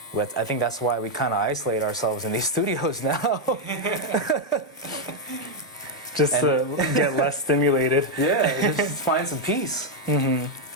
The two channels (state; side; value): normal; both; correlation 0.01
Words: I think that's why we kind of isolate ourselves in these studios now. Just to get less stimulated. Yeah, just find some peace. And